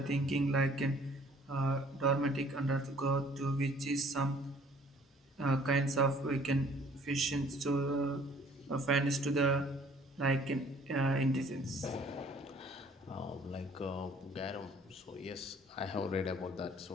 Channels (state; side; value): normal; both; correlation 0.56